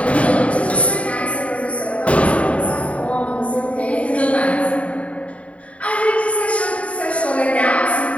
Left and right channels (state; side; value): late; right; 0.065 ms